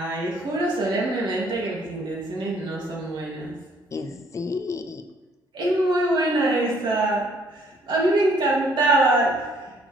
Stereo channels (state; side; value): normal; both; correlation 0.64